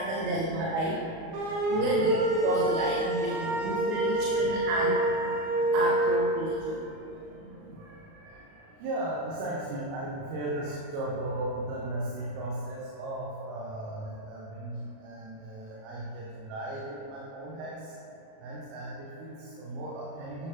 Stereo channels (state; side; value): late; left; 37 ms